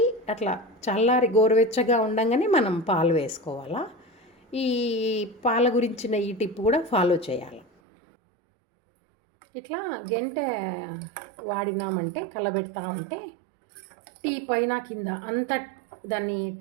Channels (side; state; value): left; drops out; at 7.7 s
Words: అట్లా చల్లారి గోరువెచ్చగా ఉండంగానే మనం పాలు వేసుకోవాలా. ఈ పాల గురించిన ఈ టిప్ కూడా ఫాలో చేయాలి. ఇట్లా గెంటె వాడినామంటే కలబెడతా ఉంటే టీ పైన కింద అంత దాన్ని